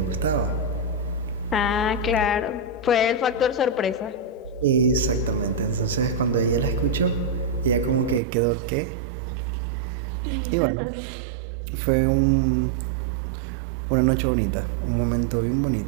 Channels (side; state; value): left; drops out; at 8.2 s